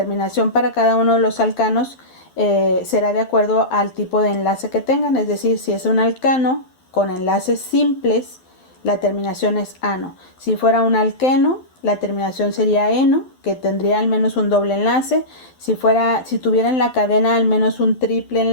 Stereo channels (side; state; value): right; late; 12 ms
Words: para cada uno de los alcanos será de acuerdo al tipo de enlace que tengan. Es decir, si es un alcano con enlaces simples, la terminación es ano. Si fuera un alqueno, la terminación sería eno, que tendría al menos un doble enlace. Si tuviera en la cadena al menos un triple